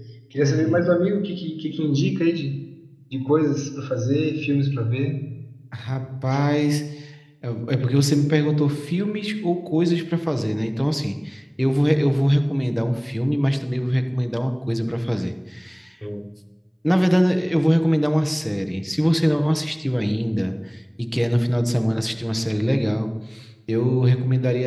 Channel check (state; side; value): identical; both; correlation 1.00